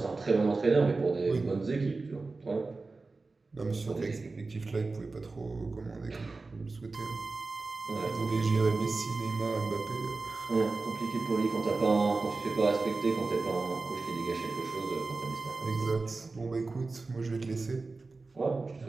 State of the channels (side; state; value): left; quieter; 3.7 dB